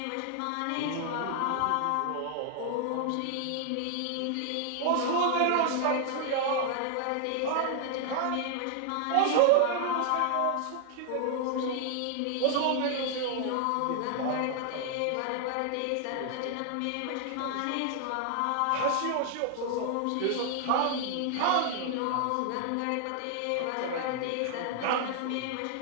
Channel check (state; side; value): different; both; correlation 0.00